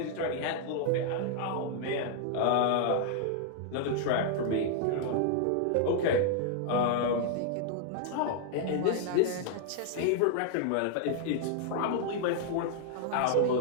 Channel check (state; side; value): different; both; correlation -0.01